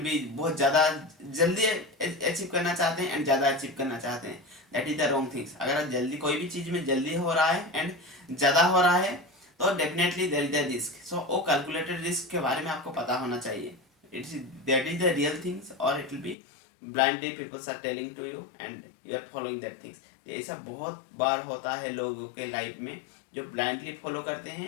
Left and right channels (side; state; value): right; drops out; at 16.4 s